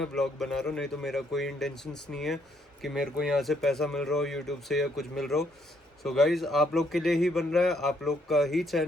व्लॉग बना रहा हूँ। नहीं तो मेरा कोई इंटेंशंस नहीं है कि मेरे को यहाँ से पैसा मिल रहा हो यूट्यूब से या कुछ मिल रहा हो। सो गाइज, आप लोग के लिए ही बन रहा है, आप लोग का ही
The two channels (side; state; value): both; normal; correlation 0.71